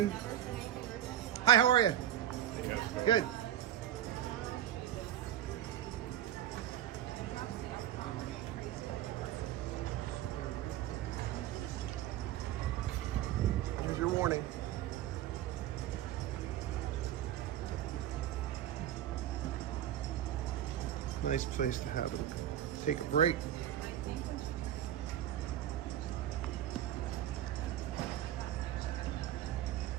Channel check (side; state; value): left; quieter; 11.7 dB